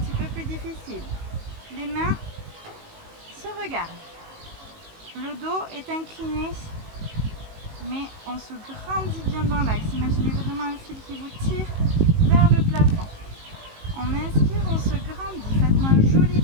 peu plus difficile. Les mains se regardent. Le dos est incliné, mais on se grandit bien dans l'axe. Imaginez vraiment un fil qui vous tire vers le plafond. On inspire, on se grandit. Faites-moi un joli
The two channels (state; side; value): late; left; 19 ms